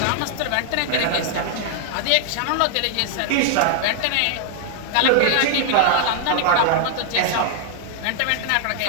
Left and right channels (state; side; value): different; both; correlation 0.00